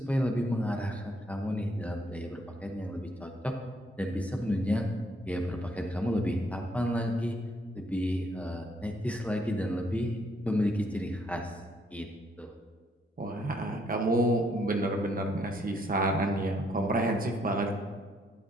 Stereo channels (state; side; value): normal; both; correlation 0.70